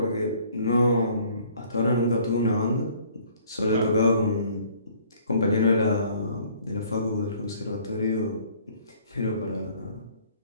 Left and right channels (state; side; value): inverted; both; correlation -0.57